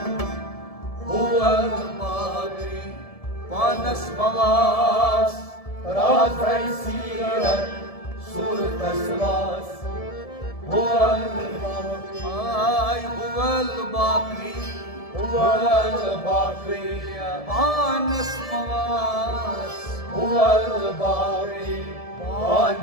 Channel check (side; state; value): right; late; 1.7 ms